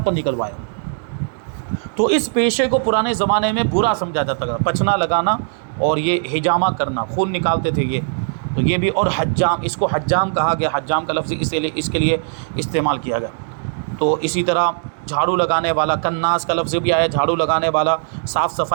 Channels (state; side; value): silent; left; digital silence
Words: پر نکلوایا۔ تو اس پیشے کو پرانے زمانے میں برا سمجھا جاتا تھا، پچھنا لگانا اور یہ حجامہ کرنا، خون نکالتے تھے یہ، تو یہ بھی، اور حجام، اس کو حجام کہا گیا، حجام کا لفظ اس کے لیے استعمال کیا گیا۔ تو اسی طرح جھاڑو لگانے والا، کناس کا لفظ بھی آیا، جھاڑو لگانے والا، صاف